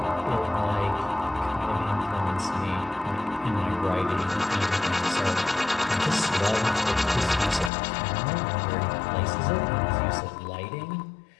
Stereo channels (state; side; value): drops out; right; at 7.7 s